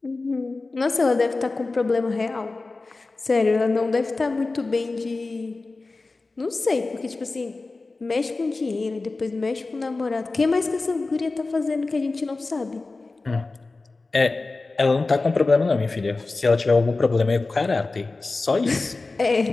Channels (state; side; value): quieter; right; 3.5 dB